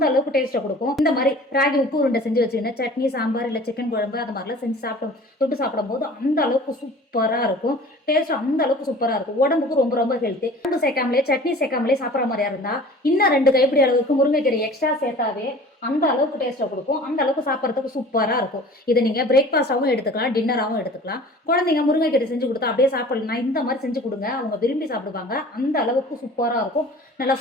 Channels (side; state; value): both; normal; correlation 0.44